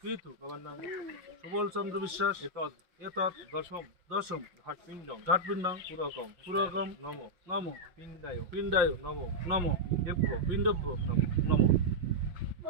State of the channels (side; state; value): left; late; 5.6 ms